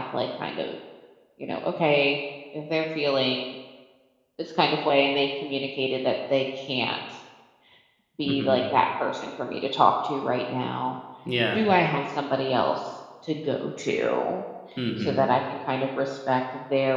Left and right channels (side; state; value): both; identical; correlation 1.00